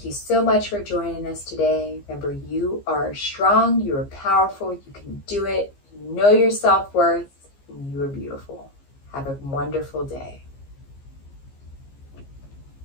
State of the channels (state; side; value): late; right; 15 ms